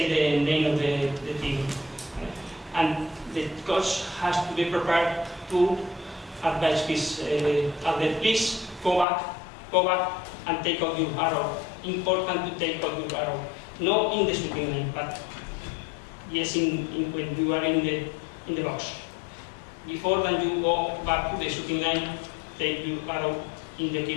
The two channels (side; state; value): right; drops out; at 9.1 s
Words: the name of the team. And the coach has to be prepared to advise his athlete, please go back and take out your arrow. Important to take out your arrow. Not in the shooting line, but yes, when you are in the box. Before then you go back to the shooting line, take your arrow in the